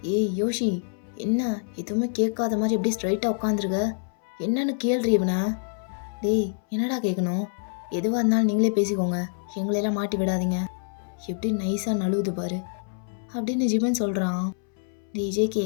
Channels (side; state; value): right; silent; 61 dB below the other